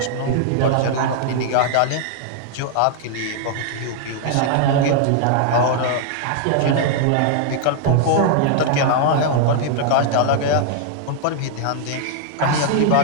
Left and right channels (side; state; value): both; different; correlation -0.01